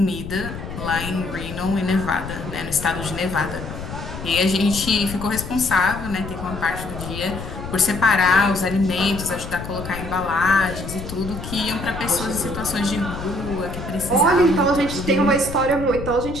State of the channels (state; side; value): noise; left; rumble, 9 dB below the sound